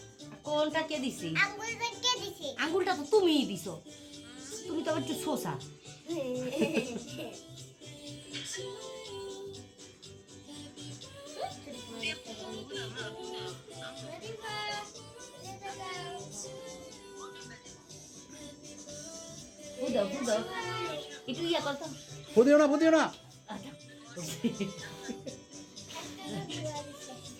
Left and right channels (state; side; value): identical; both; correlation 1.00